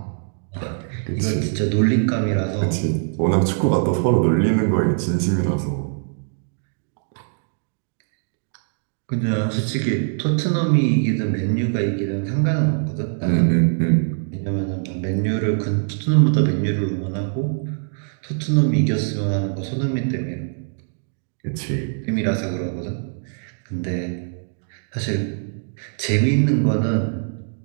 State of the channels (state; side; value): silent; left; 61 dB below the other